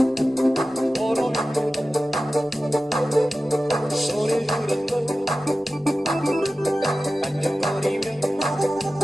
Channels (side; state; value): both; normal; correlation 0.95